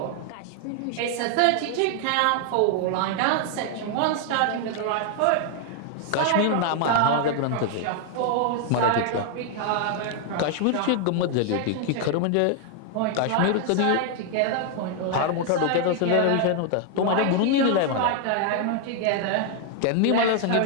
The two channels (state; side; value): different; both; correlation 0.00